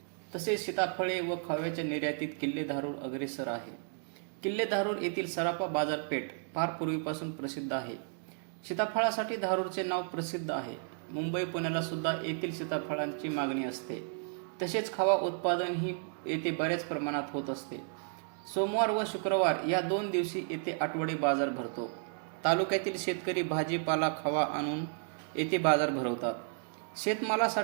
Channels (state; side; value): silent; left; 56 dB below the other